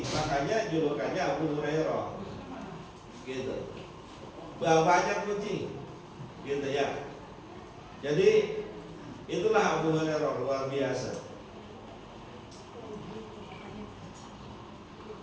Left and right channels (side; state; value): both; identical; correlation 1.00